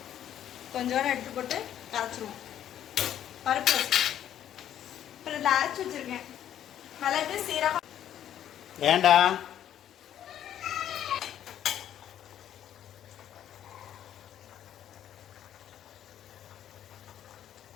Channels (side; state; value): right; quieter; 10.7 dB